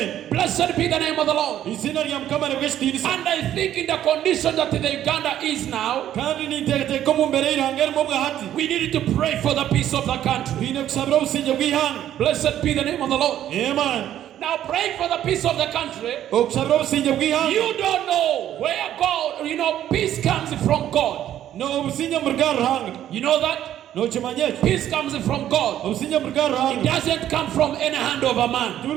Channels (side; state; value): left; quieter; 11.5 dB